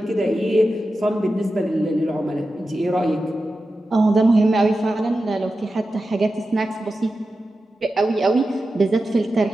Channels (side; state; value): both; normal; correlation 0.92